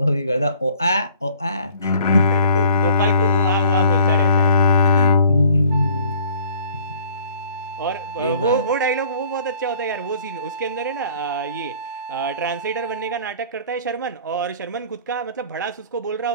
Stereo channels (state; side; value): inverted; both; correlation -0.53